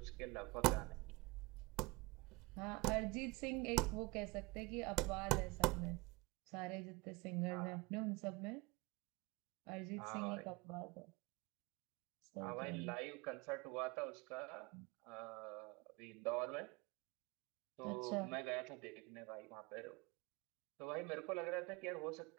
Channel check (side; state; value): left; quieter; 25.2 dB